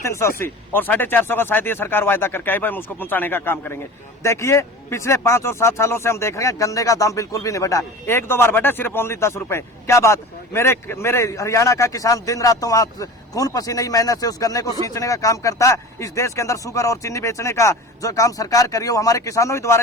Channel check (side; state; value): both; normal; correlation 0.35